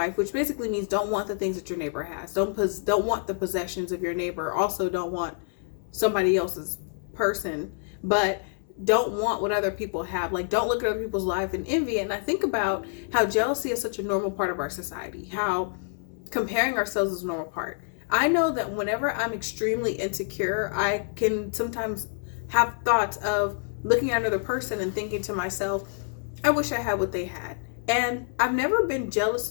which basically means don't want the things that your neighbor has. Don't want the possessions of your neighbor. Also don't want somebody else's person, but don't want what other people have. Like, don't look at other people's life and envy it. And I think about how jealousy is such a normal part of our society, how comparing ourselves is a normal part. I know that whenever I'm extremely insecure, I can sometimes have thoughts of looking at another person and thinking to myself, I wish I had what they had. And I've never been jealous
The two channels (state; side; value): silent; right; 60 dB below the other